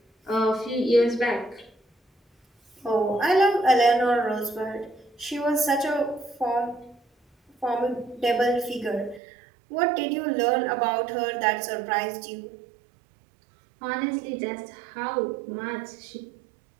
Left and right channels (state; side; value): drops out; left; at 9.2 s